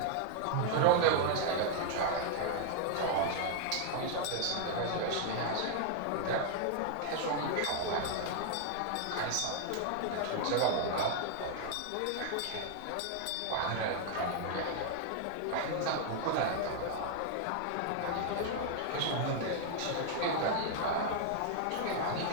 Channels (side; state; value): both; different; correlation 0.00